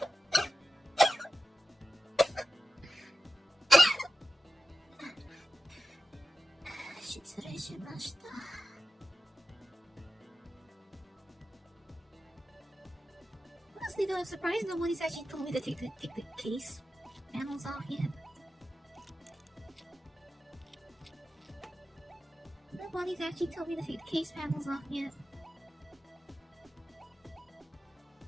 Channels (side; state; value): both; normal; correlation 0.93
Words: Honestly though, I'm surprised nobody's actually told me to take the case panels off yet. Nobody's actually told me to take the case panels off yet.